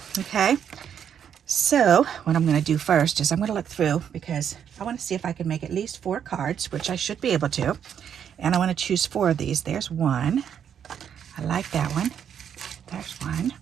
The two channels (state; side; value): quieter; left; 8.5 dB